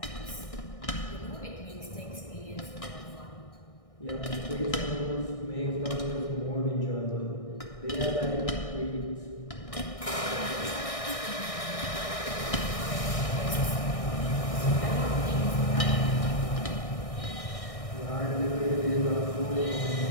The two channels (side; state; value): right; late; 1.6 ms